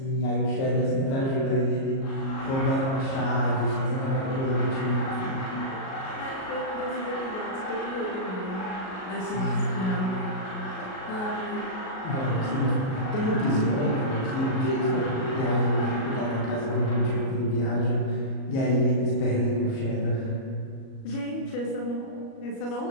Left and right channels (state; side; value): late; right; 37 ms